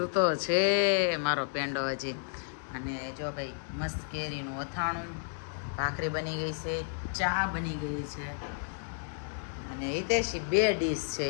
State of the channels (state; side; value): silent; right; digital silence